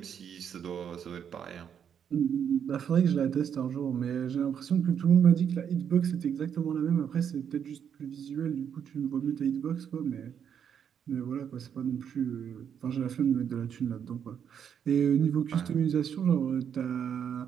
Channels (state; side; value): quieter; left; 8.2 dB